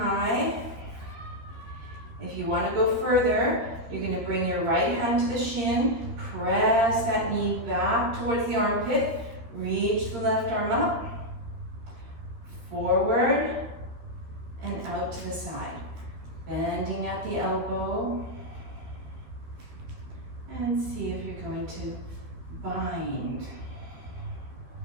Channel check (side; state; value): left; late; 13 ms